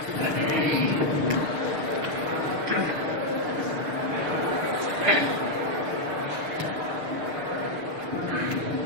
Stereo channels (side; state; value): left; late; 6.5 ms